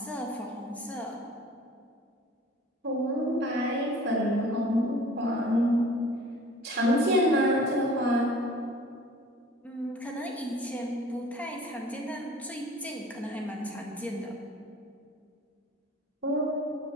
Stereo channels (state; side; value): normal; both; correlation 0.48